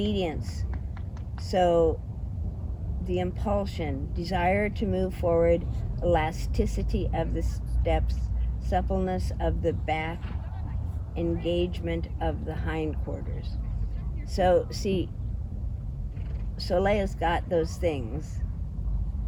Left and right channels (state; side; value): identical; both; correlation 1.00